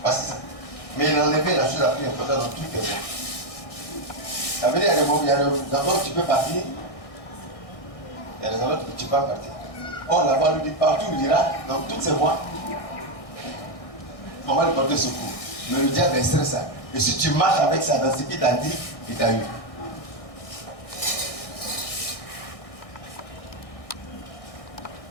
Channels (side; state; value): right; late; 1.6 ms